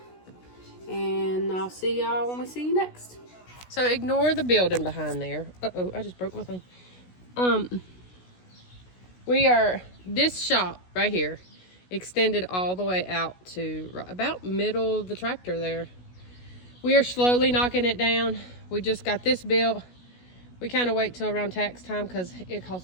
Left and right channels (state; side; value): late; right; 16 ms